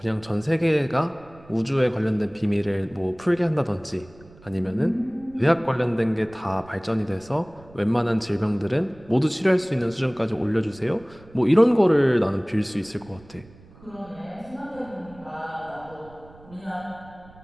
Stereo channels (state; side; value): noise; right; rumble, 23 dB below the sound